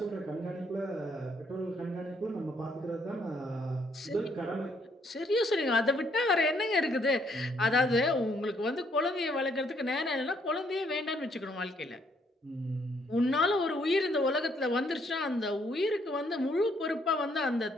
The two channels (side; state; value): both; normal; correlation 0.70